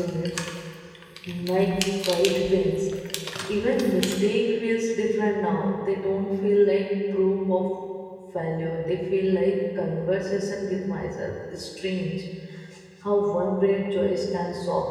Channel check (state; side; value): identical; both; correlation 1.00